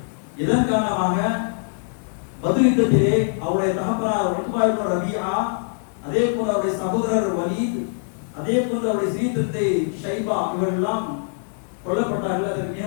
இதன் காரணமாக பத்ர் யுத்தத்திலே அவருடைய தகப்பனார் உத்பா இப்னு ரபீஆ, அதே போல அவருடைய சகோதரர் வலீத், அதே போல அவருடைய சீதத்தை ஷைபா இவரெல்லாம் கொல்லப்பட்டார்கள். அதற்கு மிக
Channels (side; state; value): right; silent; digital silence